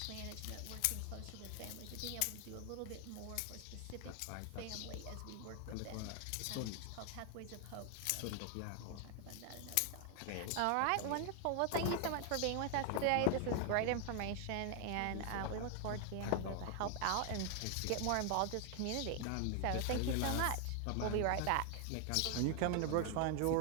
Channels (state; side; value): different; both; correlation 0.00